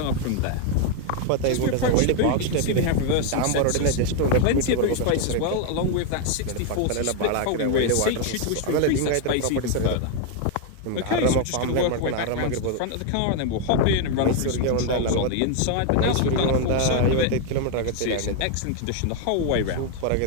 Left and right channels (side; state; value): both; different; correlation 0.01